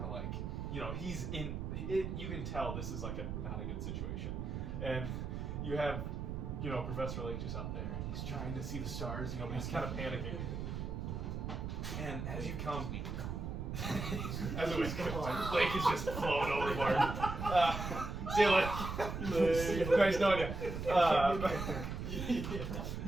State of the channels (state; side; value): noise; right; rumble, 4 dB below the sound